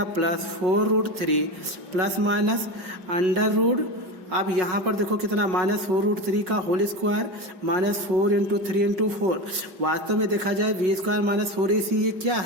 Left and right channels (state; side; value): late; left; 5.5 ms